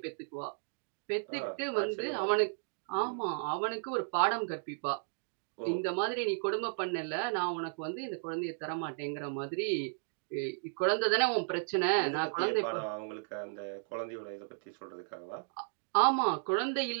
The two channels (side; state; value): left; silent; digital silence